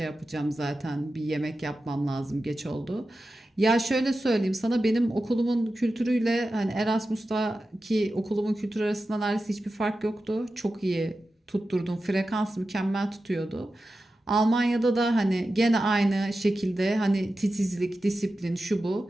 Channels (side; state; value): both; normal; correlation 0.92